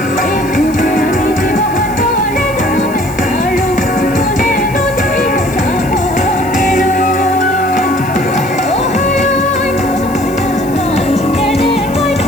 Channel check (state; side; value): noise; left; hiss, 19 dB below the sound